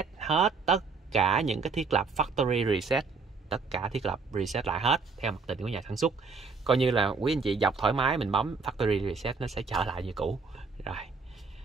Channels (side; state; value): left; quieter; 4.7 dB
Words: hết tất cả những cái thiết lập factory reset, tất cả thiết lập reset lại hết theo mặc định của nhà sản xuất. Coi như là quý anh chị dọc thoải mái, mình bấm factory reset nó sẽ trở lại như cũ. Rồi